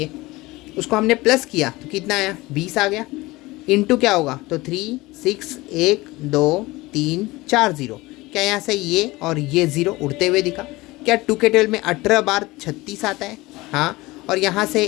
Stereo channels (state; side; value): quieter; right; 20.7 dB